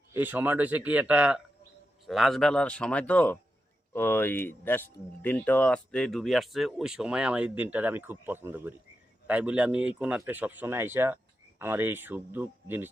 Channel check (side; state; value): both; normal; correlation 0.88